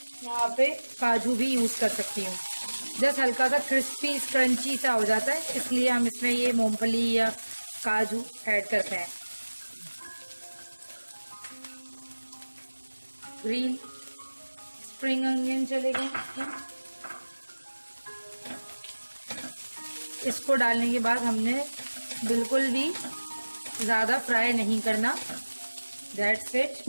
यहाँ पे काजू भी यूज़ कर सकती हूँ। जस्ट हल्का सा क्रिस्पी क्रंची सा हो जाता है, इसलिए हम इसमें ये मूंगफली या काजू ऐड करते हैं। ग्रीन स्प्रिंग अनियन चलेगा। इसको डालने के बाद हमने बिल्कुल भी ज़्यादा फ्राई नहीं करना। That's it.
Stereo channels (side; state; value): both; inverted; correlation -1.00